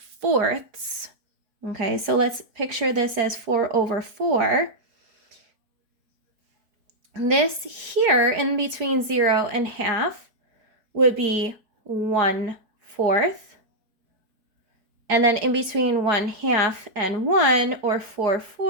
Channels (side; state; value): left; late; 4.8 ms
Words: okay, so let's picture this as 4/4. This here in between 0 and half would be 1/4. And then in between 1/2 and 1, or